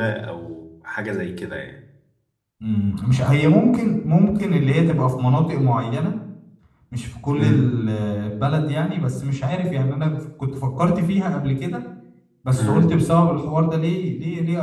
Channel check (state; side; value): identical; both; correlation 1.00